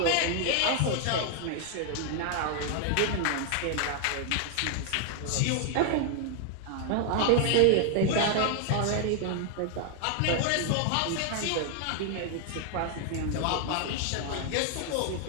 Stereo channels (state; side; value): different; both; correlation 0.00